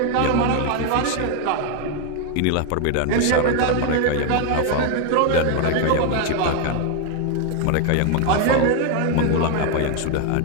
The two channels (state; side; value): different; both; correlation 0.01